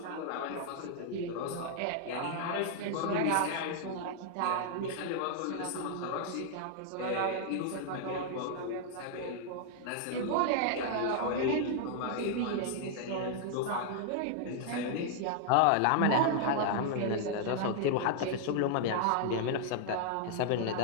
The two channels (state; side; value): different; both; correlation -0.01